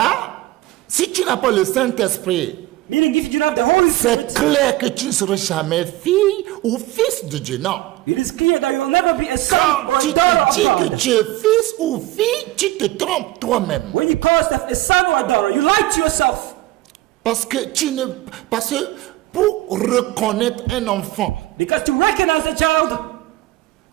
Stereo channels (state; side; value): quieter; left; 17.4 dB